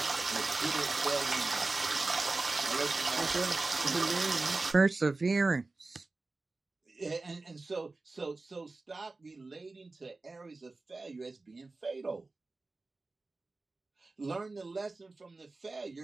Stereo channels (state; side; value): quieter; left; 3.4 dB